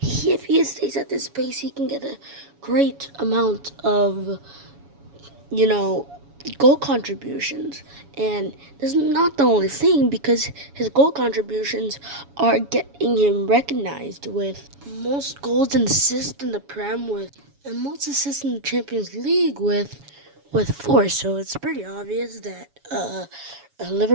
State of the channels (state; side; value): late; left; 7.1 ms